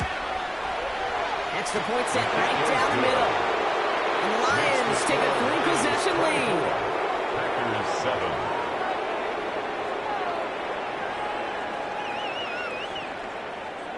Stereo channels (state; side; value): identical; both; correlation 1.00